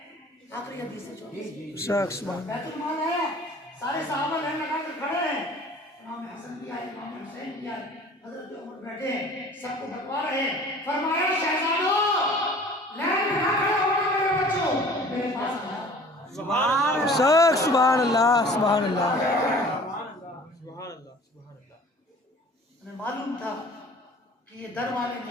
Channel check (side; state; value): both; normal; correlation 0.47